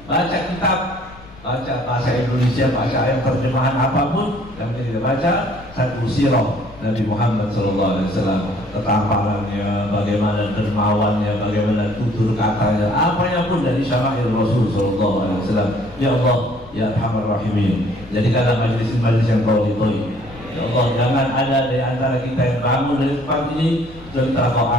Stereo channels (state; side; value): noise; left; rumble, 21 dB below the sound